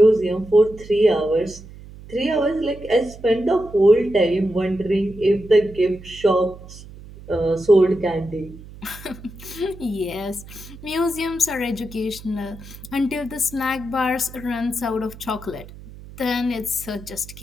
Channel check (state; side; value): noise; right; hum, 17 dB below the sound